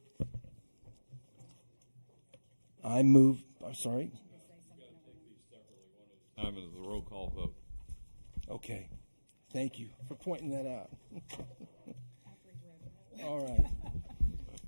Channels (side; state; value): both; inverted; correlation -1.00